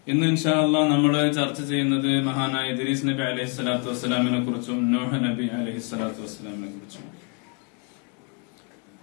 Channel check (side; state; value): right; quieter; 36.2 dB